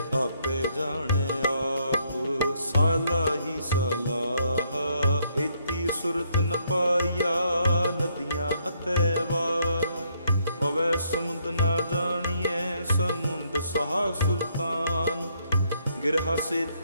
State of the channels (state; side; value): inverted; both; correlation -0.71